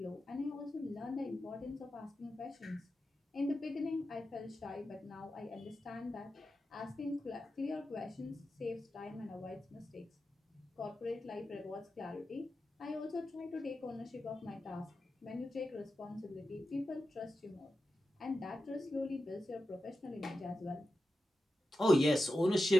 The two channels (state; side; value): normal; both; correlation 0.91